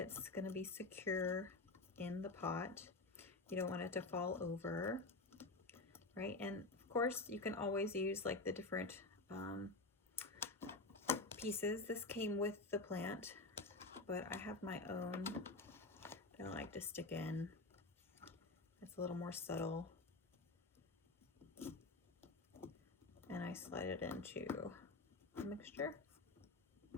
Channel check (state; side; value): quieter; right; 3.2 dB